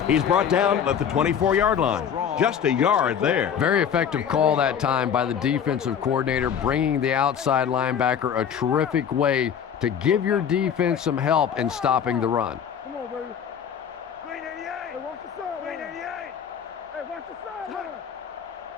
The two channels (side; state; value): right; quieter; 8.1 dB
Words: He's brought down at the 24-yard line. Just a yard there. Very effective call that time by the defensive coordinator, bringing the outside linebacker a terrific way to give your defense some help in stopping the run. Come on, baby. 388. Hey, watch the side. 388. Hey, watch the side. He